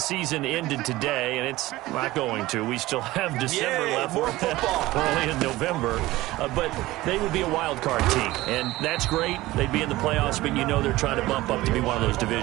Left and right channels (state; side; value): quieter; left; 18.0 dB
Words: season ended today, and it's not going to, we still have December left. More football. Early in November. But they would be a wild card team. And that's great. They'd be in the playoffs, but you know they're trying to bump up to be one of those